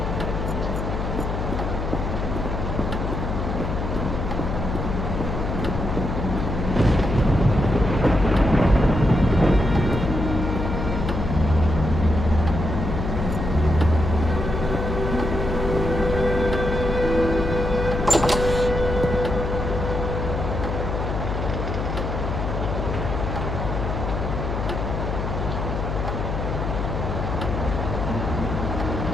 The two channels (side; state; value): left; noise; hum, 3 dB below the sound